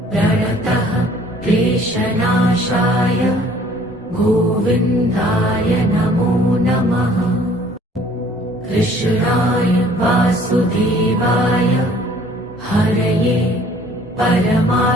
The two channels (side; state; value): both; normal; correlation 0.56